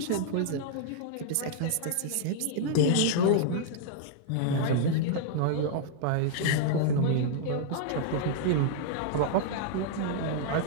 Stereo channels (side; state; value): both; different; correlation -0.01